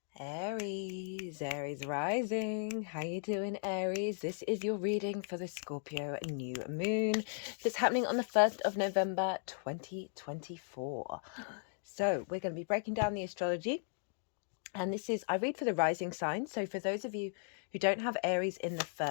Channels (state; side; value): silent; right; digital silence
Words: Aries rising. How you doing, Aries? This is your reading for the Scorpio new moon that's happening on the 1st of November 2024. So we're going to be breaking down the astrology. And this is, I read for the rising sign. So for those of you who don't have Aries in the